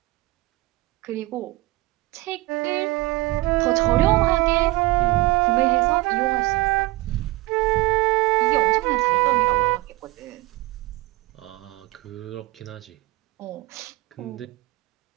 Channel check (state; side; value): quieter; left; 19.7 dB